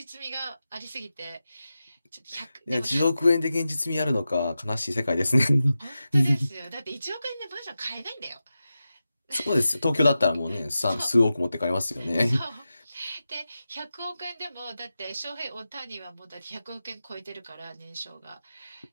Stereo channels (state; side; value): inverted; both; correlation -0.92